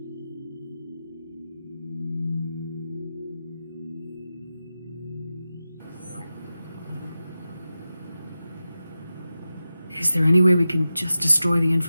Is there any way we can just destroy the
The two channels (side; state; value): both; inverted; correlation -0.93